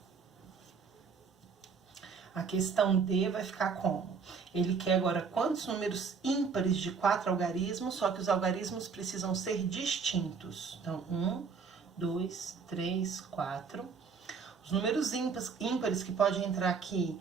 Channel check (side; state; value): left; quieter; 5.6 dB